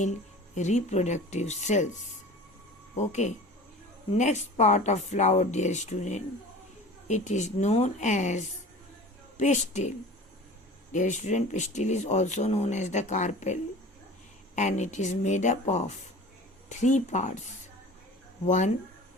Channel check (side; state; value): both; normal; correlation 0.40